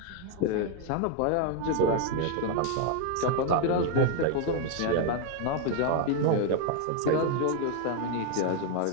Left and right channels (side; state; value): both; different; correlation 0.00